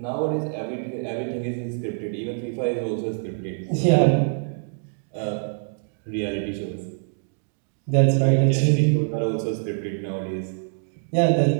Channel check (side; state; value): left; silent; digital silence